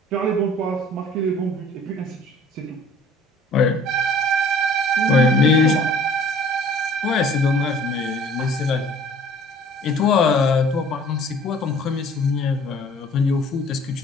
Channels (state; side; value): normal; both; correlation 0.52